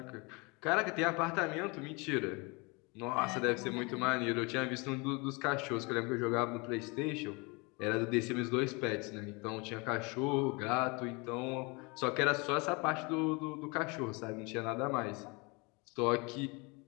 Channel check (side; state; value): right; quieter; 28.6 dB